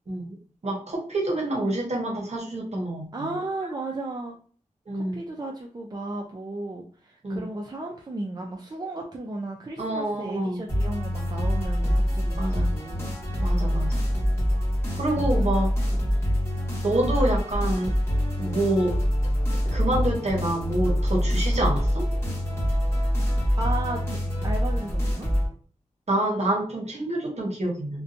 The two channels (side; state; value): both; normal; correlation 0.86